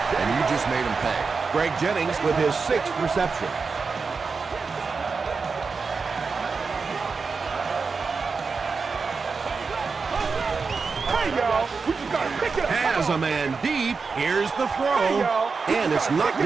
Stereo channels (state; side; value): quieter; left; 4.8 dB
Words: and you just made them pay. Greg Jennings with his 6th reception. Has a man deep. Here's the throw. And it's knocked